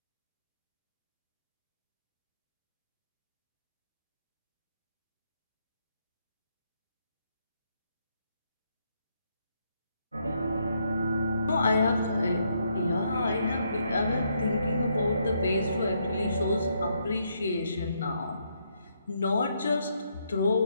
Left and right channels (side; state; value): both; inverted; correlation -0.75